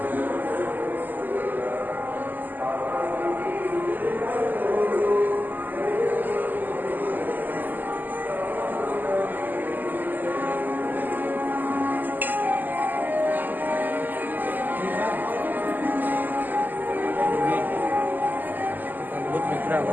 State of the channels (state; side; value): late; left; 0.086 ms